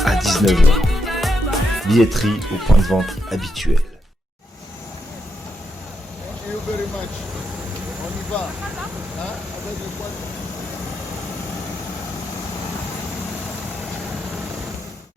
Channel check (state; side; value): normal; both; correlation 0.81